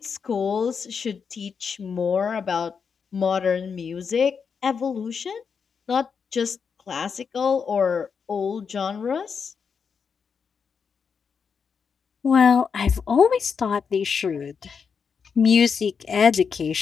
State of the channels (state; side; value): quieter; right; 6.1 dB